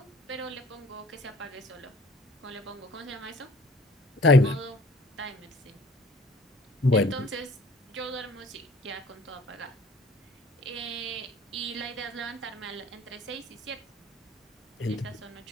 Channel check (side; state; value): both; normal; correlation 0.52